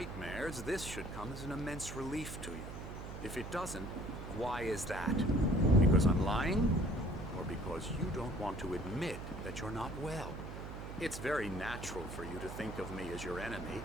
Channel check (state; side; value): noise; right; hum, 9 dB below the sound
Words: this should come as an immense relief to you. If it doesn't, why is that? Because I'm lying? Or because you don't want to admit that you're not well? It's very natural for you to think of me as your enemy.